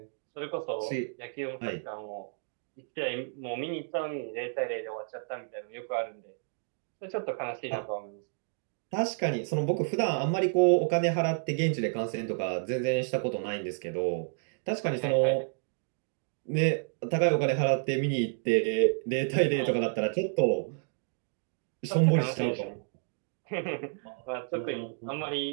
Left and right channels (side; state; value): left; silent; digital silence